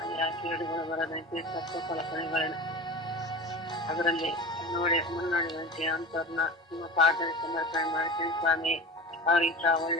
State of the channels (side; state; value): both; normal; correlation 0.32